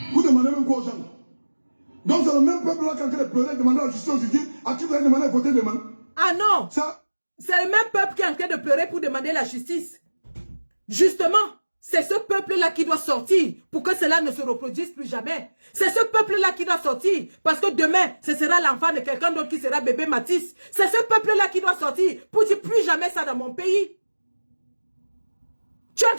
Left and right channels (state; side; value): inverted; both; correlation -1.00